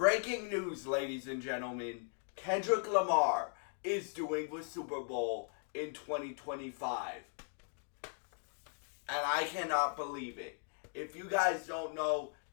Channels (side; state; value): right; silent; 52 dB below the other